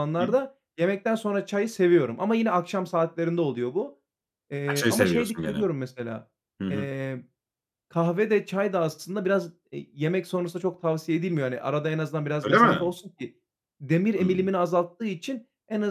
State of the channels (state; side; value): identical; both; correlation 1.00